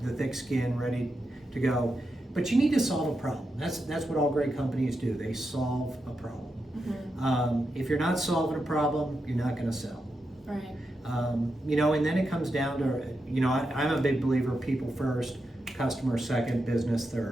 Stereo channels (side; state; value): both; normal; correlation 0.87